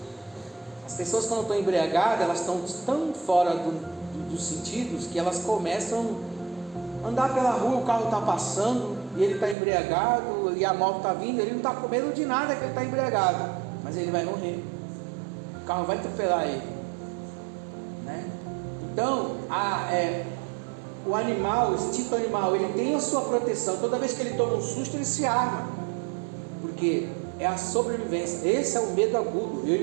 As pessoas, quando estão embriagadas, elas estão tão fora dos sentidos que elas começam a andar pela rua, o carro está passando e ele está embriagado e a moto está vindo, ele não está com medo de nada que ele está embriagado, mas ele vai morrer. O carro vai atropelar ele, né? Então, o animal, o instinto animal, ele tem a sua proteção. Toda vez que ele toma um susto, ele se arma, porque é a sobrevivência. Esse é o medo agudo. Eu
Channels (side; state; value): left; drops out; at 9.6 s